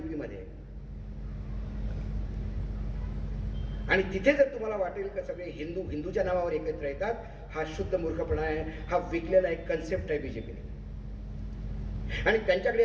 मध्ये। आणि तिथे जर तुम्हाला वाटेल का सगळे हिंदू हिंदूच्या नावावर एकत्र येतात, हा शुद्ध मूर्खपणा आहे, हा विकलेला एक कन्सेप्ट आहे बीजेपीने. आणि त्यांच्याकडे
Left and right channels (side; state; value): both; identical; correlation 1.00